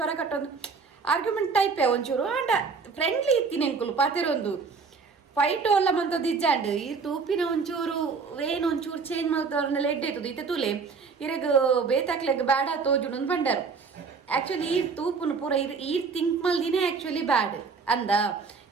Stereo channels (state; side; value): quieter; left; 5.0 dB